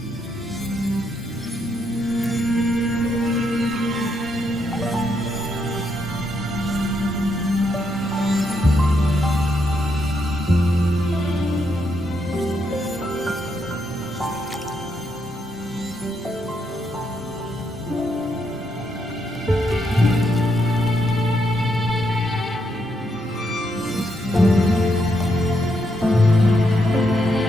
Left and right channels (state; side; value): normal; both; correlation 0.78